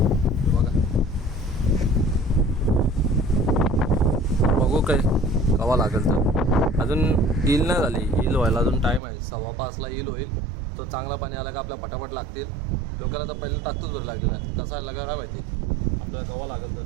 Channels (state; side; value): drops out; left; at 9.0 s